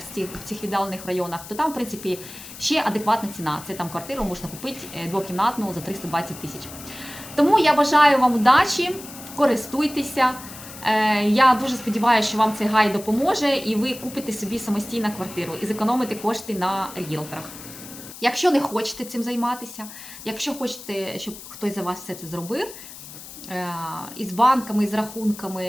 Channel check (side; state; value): left; noise; hiss, 14 dB below the sound